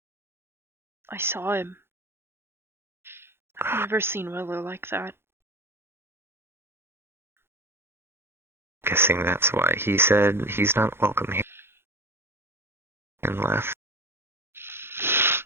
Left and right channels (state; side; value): late; left; 0.11 ms